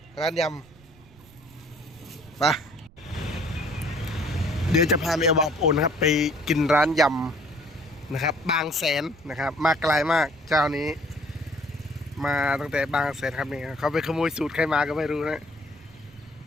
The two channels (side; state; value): right; noise; rumble, 25 dB below the sound